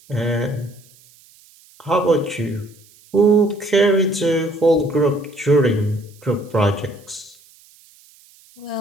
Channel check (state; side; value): noise; right; hiss, 28 dB below the sound